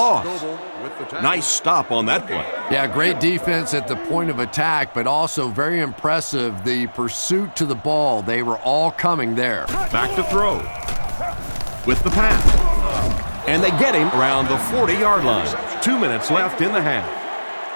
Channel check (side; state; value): both; inverted; correlation -1.00